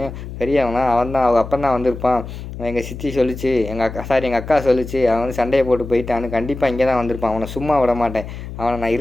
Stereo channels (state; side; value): noise; left; hum, 10 dB below the sound